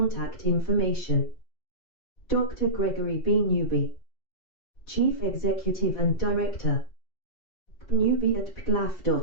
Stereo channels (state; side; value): late; right; 4.1 ms